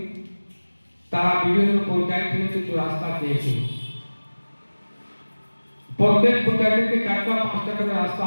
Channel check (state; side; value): inverted; both; correlation -1.00